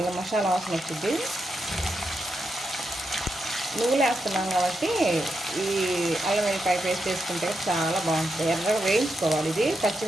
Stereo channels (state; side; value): normal; both; correlation 0.85